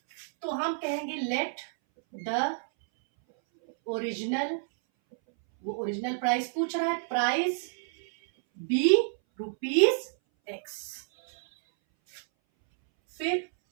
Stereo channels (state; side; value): silent; left; 58 dB below the other